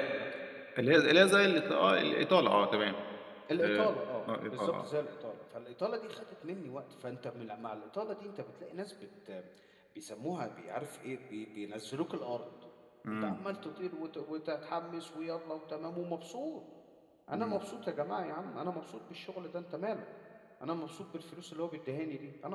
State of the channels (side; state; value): both; identical; correlation 1.00